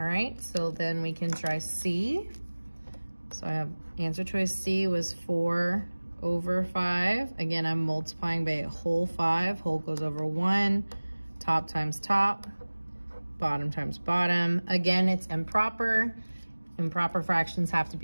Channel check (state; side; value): inverted; both; correlation -1.00